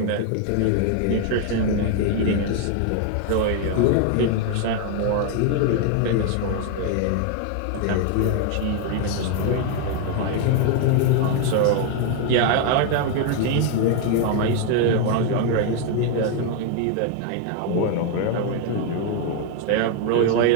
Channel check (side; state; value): both; different; correlation 0.00